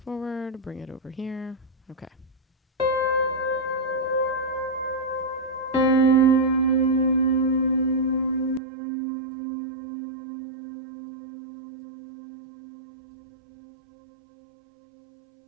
forward, bring it over here. Okay.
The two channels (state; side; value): drops out; left; at 8.6 s